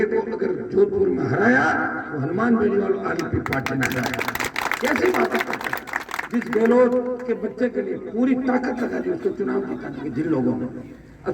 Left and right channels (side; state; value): both; identical; correlation 1.00